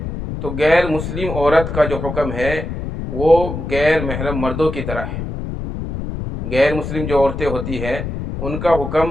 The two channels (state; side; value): noise; left; rumble, 6 dB below the sound